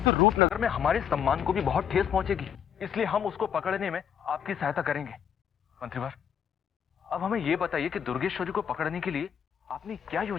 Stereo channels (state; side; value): quieter; right; 8.6 dB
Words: तो रूपनगर में हमारे सम्मान को भी बहुत ठेस पहुंचेगी। इसलिए हम उसको पकड़ने में आपकी सहायता करेंगे। मंत्रीवर, अब हमें यह बताइए कि दुर्गेश्वरी को पकड़ने के लिए आपने क्या